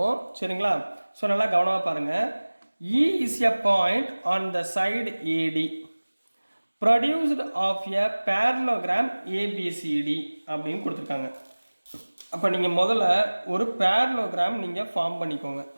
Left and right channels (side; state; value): both; inverted; correlation -1.00